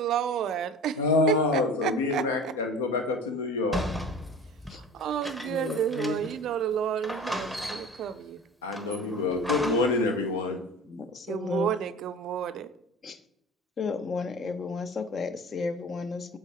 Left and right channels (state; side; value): normal; both; correlation 0.38